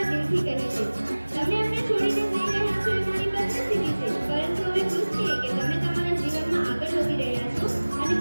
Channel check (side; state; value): both; inverted; correlation -1.00